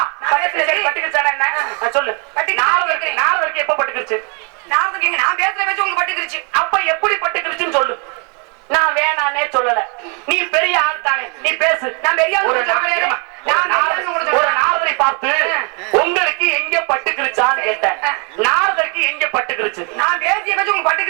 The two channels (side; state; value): left; quieter; 35.4 dB